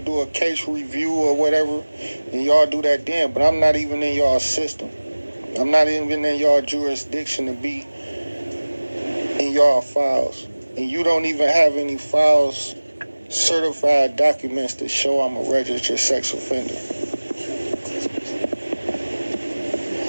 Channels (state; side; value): inverted; both; correlation -1.00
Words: a case review or whatever, then y'all do that then. But I'm not even in y'all system. I'm not even in y'all jurisdiction to be in y'all files. And you don't even have any files, certified documents to show I'm a registered sex offender.